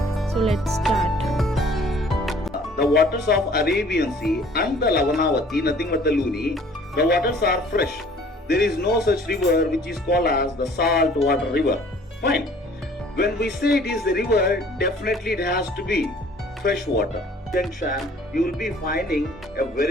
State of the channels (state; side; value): normal; both; correlation 0.54